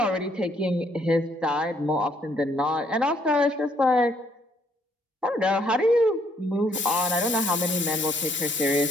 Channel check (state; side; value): normal; both; correlation 0.68